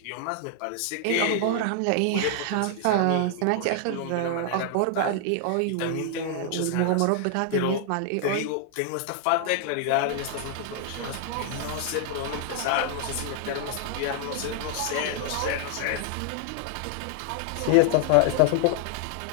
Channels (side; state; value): both; different; correlation 0.00